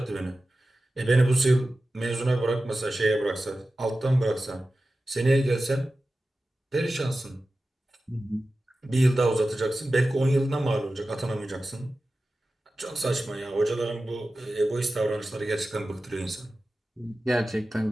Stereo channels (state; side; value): normal; both; correlation 0.94